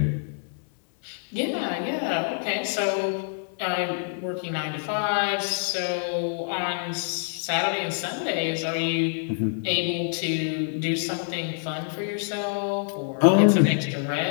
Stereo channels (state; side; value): silent; right; digital silence